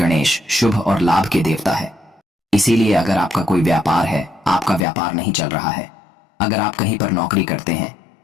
शुभ और लाभ के देवता है। इसीलिए अगर आपका कोई व्यापार है, आपका व्यापार नहीं चल रहा है, अगर आप कहीं पर नौकरी करते हैं,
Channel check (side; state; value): right; drops out; at 4.9 s